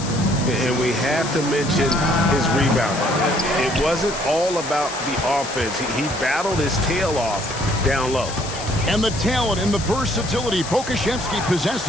we have to mention his rebound. It wasn't all about the offense. He battled his tail off down low. And the talent and the versatility Pokusevski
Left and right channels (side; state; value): left; noise; hiss, 10 dB below the sound